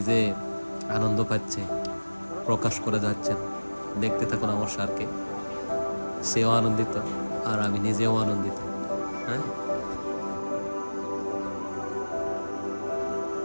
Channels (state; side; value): inverted; both; correlation -1.00